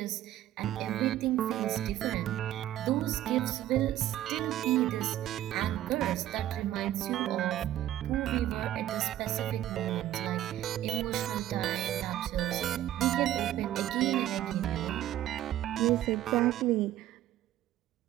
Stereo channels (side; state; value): left; quieter; 13.1 dB